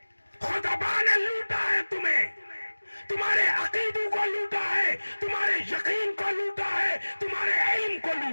خطبہ نے لوٹا ہے تمہیں، تمہارے عقیدوں کو لوٹا ہے، تمہارے یقین کو لوٹا ہے، تمہارے علم کو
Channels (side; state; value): both; inverted; correlation -1.00